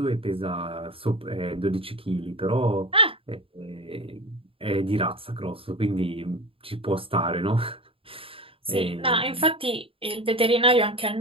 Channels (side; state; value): left; late; 0.27 ms